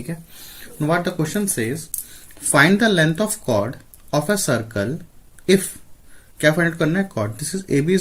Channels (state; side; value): identical; both; correlation 1.00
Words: Now what the question says, find the length of chord of a circle if क्या find out करना है chord. This is AB